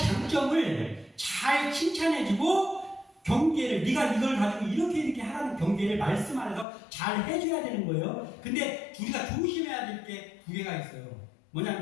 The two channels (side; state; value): right; drops out; at 6.7 s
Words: 잘 칭찬해주고 경계를, 네가 이걸 가지고 이렇게 하라는 경계를 말씀 안에서 잘 해줘야 되는 거예요. 근데 우리가 조심해야 될 게 두 개가 있어요.